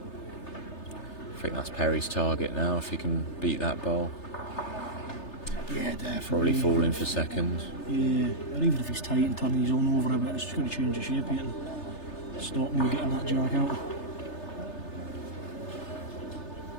I think that's Perry's target now, if he can beat that ball. Yeah, definitely. Probably falling for second. Yeah, or even if he's tight and turning his own over a bit, it's just going to change the shape here and stop me getting that jack out.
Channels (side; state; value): right; late; 3.3 ms